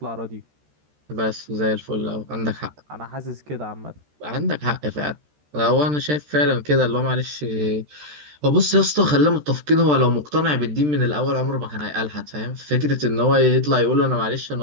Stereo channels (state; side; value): late; left; 13 ms